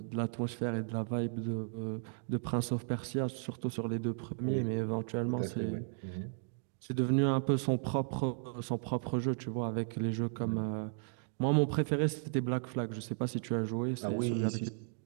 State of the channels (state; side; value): silent; left; digital silence